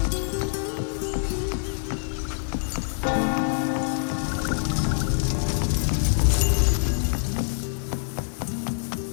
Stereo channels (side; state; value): right; silent; 61 dB below the other